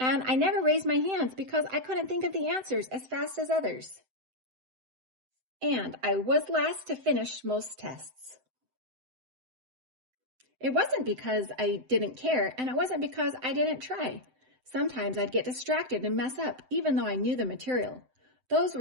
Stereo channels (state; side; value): late; left; 7.8 ms